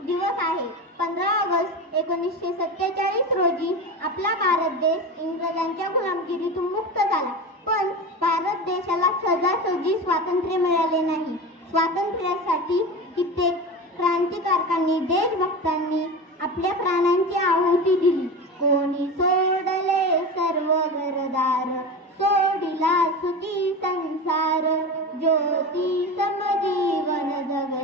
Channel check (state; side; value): normal; both; correlation 0.26